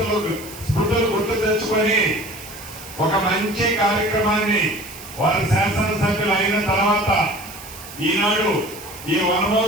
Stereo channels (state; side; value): noise; right; hiss, 15 dB below the sound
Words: స్మృతులు గుర్తు తెచ్చుకొని ఒక మంచి కార్యక్రమాన్ని వారి శాసనసభ్యులు అయిన తర్వాత ఈనాడు ఈ